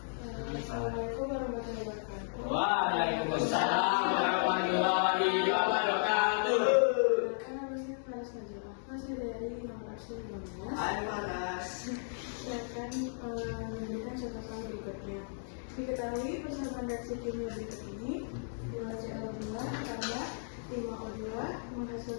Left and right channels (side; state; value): right; silent; digital silence